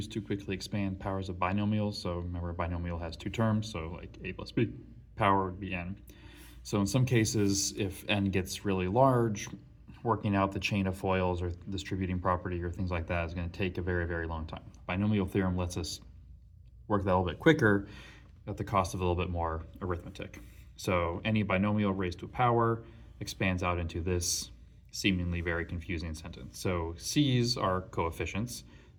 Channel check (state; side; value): identical; both; correlation 1.00